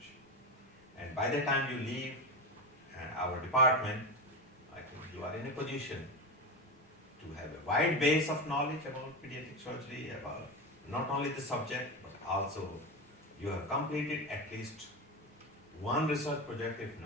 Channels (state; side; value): normal; both; correlation 0.19